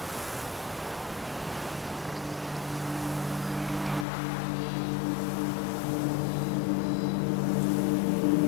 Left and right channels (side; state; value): right; drops out; at 4.0 s